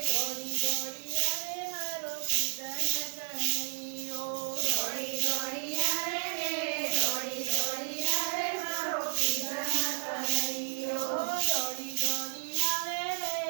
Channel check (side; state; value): left; silent; digital silence